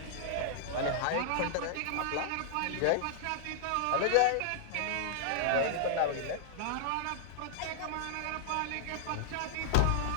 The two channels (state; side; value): different; both; correlation -0.01